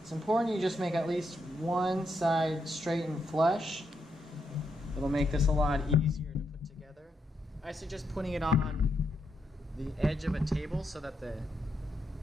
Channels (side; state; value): both; normal; correlation 0.81